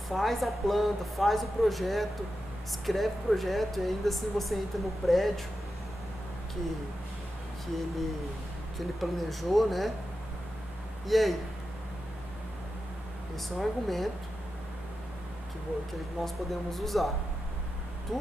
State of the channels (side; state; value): both; normal; correlation 0.90